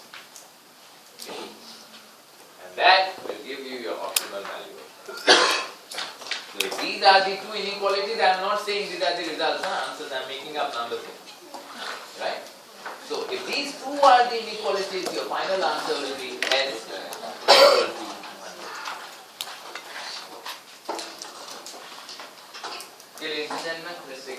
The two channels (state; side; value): identical; both; correlation 1.00